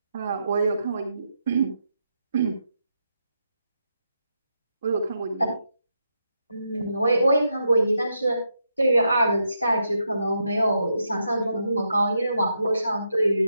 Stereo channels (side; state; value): both; inverted; correlation -0.83